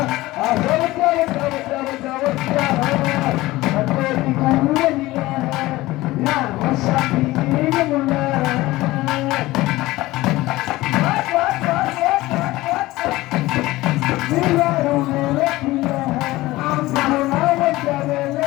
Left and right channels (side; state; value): right; quieter; 18.5 dB